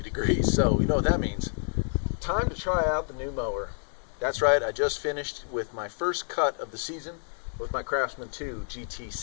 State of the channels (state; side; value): silent; right; 59 dB below the other